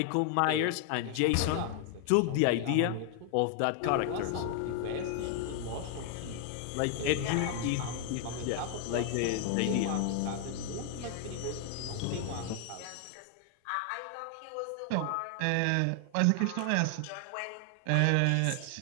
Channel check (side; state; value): both; different; correlation 0.00